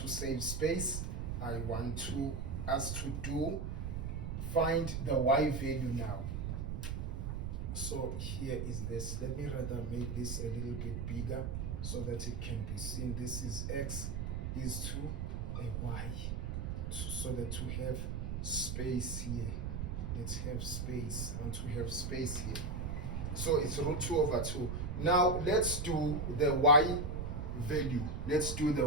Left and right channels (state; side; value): noise; right; rumble, 3 dB below the sound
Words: save space. I want us to find the y value now. So here is this. Let me rather make this a little bit bigger so that it can be seen. This is x is to a y. So that to have space here. Let's have space. I want to have space here. So it's root 2 over 2. Now let's do the y value. Let's do the